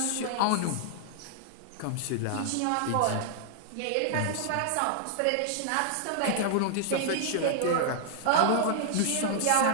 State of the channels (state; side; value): different; both; correlation -0.01